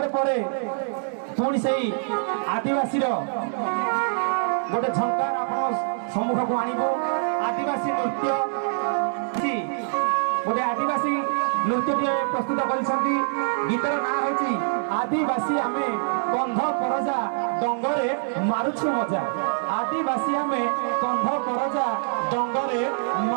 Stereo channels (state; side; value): silent; left; digital silence